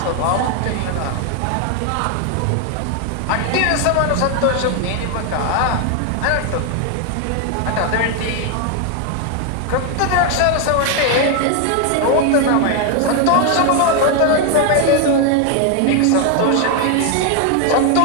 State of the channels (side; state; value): both; different; correlation 0.01